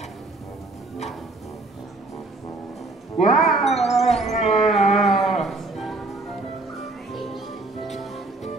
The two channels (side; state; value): left; quieter; 3.2 dB